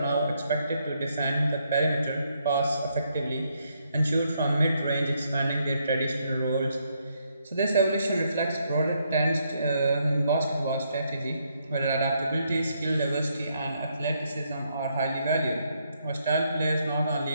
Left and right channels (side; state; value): both; inverted; correlation -0.75